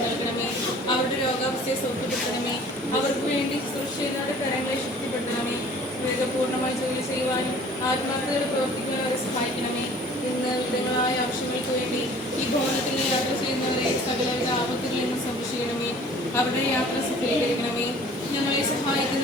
നൽകണമേ. അവരുടെ രോഗാവസ്ഥയെ സൗഖ്യപ്പെടുത്തണമേ. അവർക്ക് വേണ്ടി സുരക്ഷിതരുടെ കരങ്ങളെ ശക്തിപ്പെടുത്തണമേ. വേഗപൂർണ്ണമായി ജോലി ചെയ്യുവാനും ആത്മാർത്ഥതയോടെ പ്രവർത്തിക്കുവാനും അവരെ സഹായിക്കണമേ. ഇന്ന് വിവിധങ്ങളായ ആവശ്യങ്ങൾക്ക് വേണ്ടി ഈ ഭവനത്തിൽ യാത്ര ചെയ്യുന്നവരെ സകലവിധ ആപത്തുകളിൽ നിന്ന് സംരക്ഷിക്കണമേ. അവരുടെ യാത്ര സഫലീകരിക്കണമേ. ഞങ്ങളെ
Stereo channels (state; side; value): normal; both; correlation 0.50